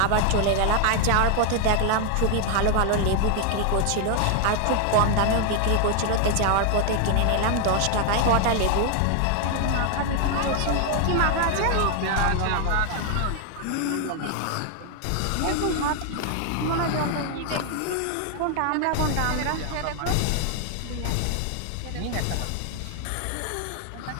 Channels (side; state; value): both; different; correlation 0.00